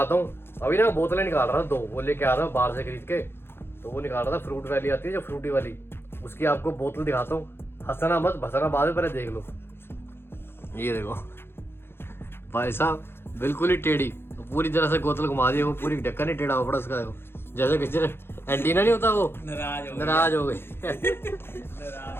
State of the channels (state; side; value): late; right; 0.11 ms